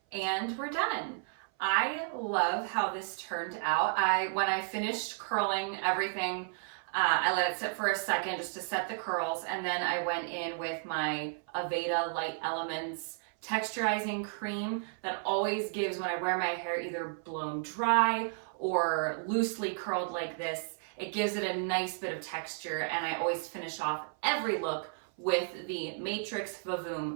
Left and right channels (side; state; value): left; silent; 56 dB below the other